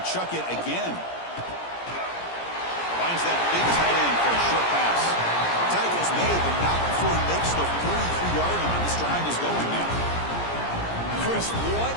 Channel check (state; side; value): late; right; 17 ms